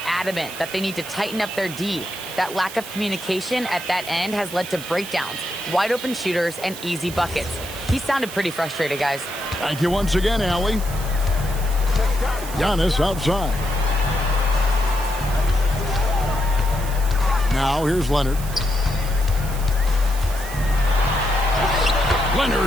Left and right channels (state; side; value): noise; right; hiss, 13 dB below the sound